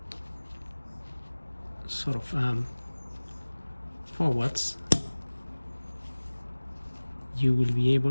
sort of forwards, you will be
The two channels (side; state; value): both; inverted; correlation -1.00